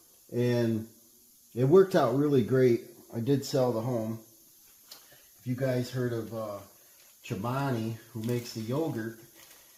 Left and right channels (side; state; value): both; identical; correlation 1.00